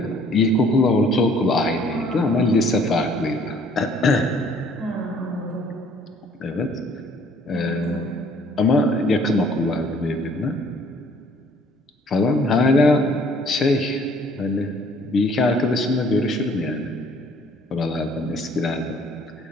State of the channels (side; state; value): both; normal; correlation 0.59